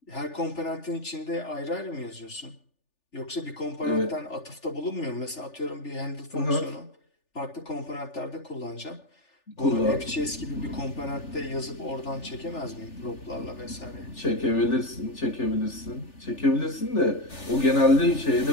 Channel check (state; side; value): late; right; 3.4 ms